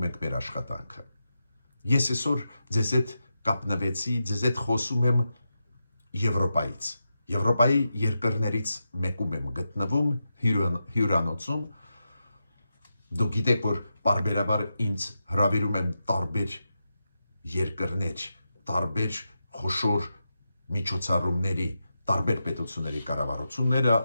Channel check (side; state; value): both; inverted; correlation -0.88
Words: ենք մեր աշխատանքը։ Ես այսօր ձեզ հետ կապնվեցի, ձեզ հետ խոսում եմ Եվրոպայից։ Եվրոպայի երկրներից մեկում եմ գտնվում հյուրանոցում։ Դուք գիտեք, որ պարբերաբար ինձ հրավիրում են տարբեր երկրներ, տարբեր խոշոր միջոցառումների, տարբեր պետությունների կառավարությունները,